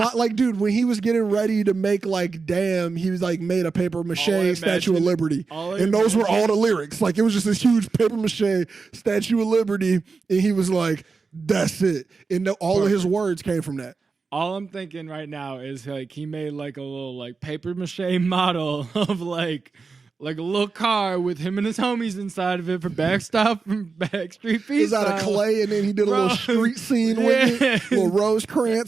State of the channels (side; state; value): left; quieter; 4.6 dB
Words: dude, when he was getting ready to make like Damn, he was like made a paper mache Statue of Liberty, and those were all the lyrics. Like, it was just this huge paper mache Statue of Liberty, and he was like, that's it, and all of his words came from that. All I'm thinking right now is like he made like a little like paper mache model of like a little car with him and his homies inside of it for Backstop and Backstreet Freestyle. It was out of clay, and then he did a little street scene with it, little